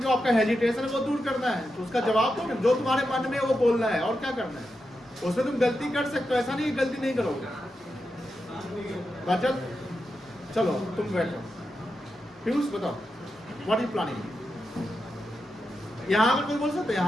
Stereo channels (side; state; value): both; normal; correlation 0.88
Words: जो आपका हेजिटेशन है वो दूर करना है, तो उसका जवाब दो, जो तुम्हारे मन में है वो बोलना है, और क्या करना है। उसमें तुम गलती कर सकते हो, ऐसा नहीं गलती नहीं करोगे। बचल चलो तुम बैठो, पीयूष बताओ व्हाट इज प्लानिंग। यहाँ पर कोई बोल सकते हैं,